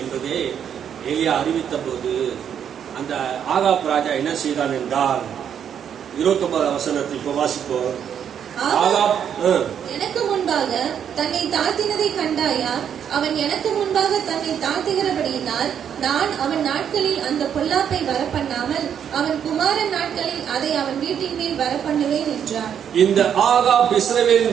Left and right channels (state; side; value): quieter; left; 8.6 dB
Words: என்பதே எலியா அறிவித்த போது, அந்த ஆகாப் ராஜா என்ன செய்தான் என்றால் 29ஆம் வசனத்தை இப்ப வாசிப்போம். எனக்கு முன்பாக தன்னை தாழ்த்தினதை கண்டாயா? அவன் எனக்கு முன்பாக தன்னை தாழ்த்துகிறபடியினால் நான் அவன் நாட்களில் அந்த பொல்லாப்பை வரப்பண்ணாமல் அவன் குமாரன் நாட்களில் அதை அவன் வீட்டின் மேல் வரப்பண்ணுவேன் என்றார். இந்த ஆகாப்